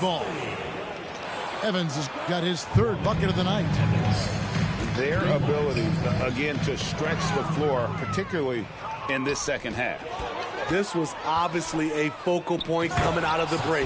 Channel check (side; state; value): both; identical; correlation 1.00